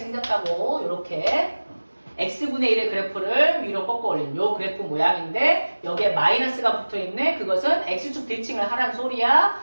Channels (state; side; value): inverted; both; correlation -1.00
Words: 이렇게 x분의 1의 그래프를 위로 꺾어 올린 요 그래프 모양인데 여기에 마이너스가 붙어있네. 그것은 x축 대칭을 하라는